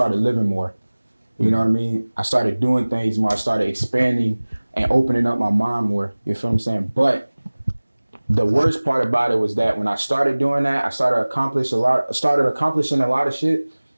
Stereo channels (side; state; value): both; inverted; correlation -1.00